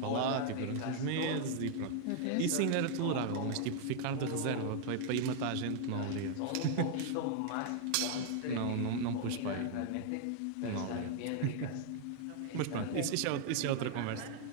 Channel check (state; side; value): different; both; correlation 0.00